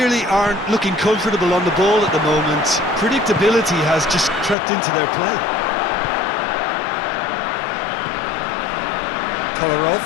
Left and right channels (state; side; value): drops out; right; at 4.5 s